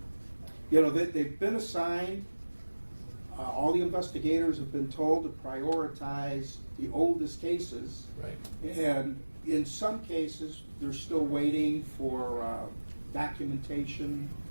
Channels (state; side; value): inverted; both; correlation -1.00